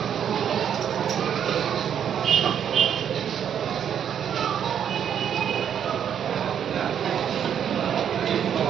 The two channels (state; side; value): quieter; left; 8.8 dB